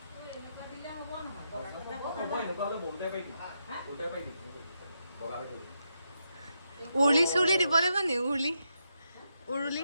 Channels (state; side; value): inverted; both; correlation -0.83